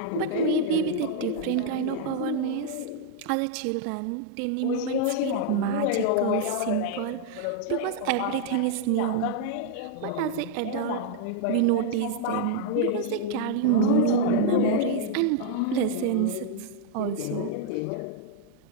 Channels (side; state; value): both; different; correlation -0.01